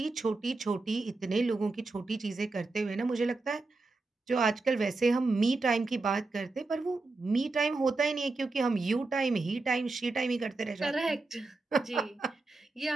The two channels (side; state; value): left; quieter; 3.5 dB